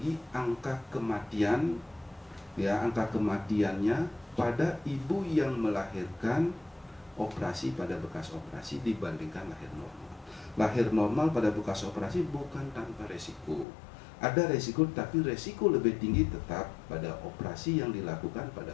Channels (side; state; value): right; drops out; at 13.7 s